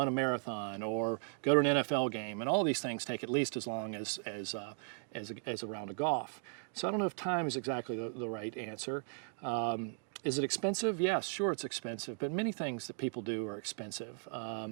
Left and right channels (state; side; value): silent; left; 53 dB below the other